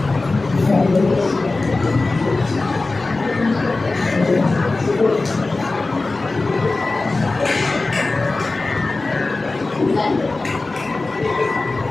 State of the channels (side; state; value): right; quieter; 3.4 dB